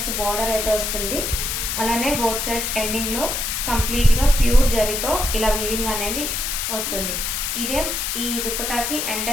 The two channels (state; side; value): noise; left; hiss, 1 dB below the sound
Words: బార్డర్ అయితే వస్తుంది. అలానే బోత్ సైడ్స్ ఎండింగ్ లో కంప్లీట్ గా ప్యూర్ జరీతో ఇలా వీవింగ్ అనేది వస్తుంది. ఇదే ఈ దుప్పటాకి